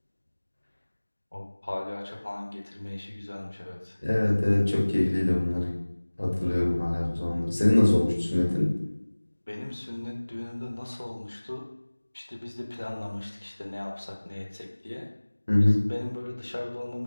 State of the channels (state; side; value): inverted; both; correlation -1.00